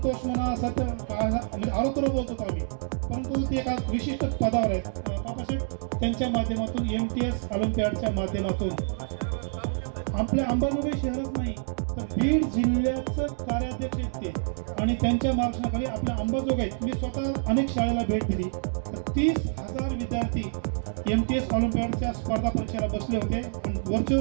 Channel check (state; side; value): silent; left; digital silence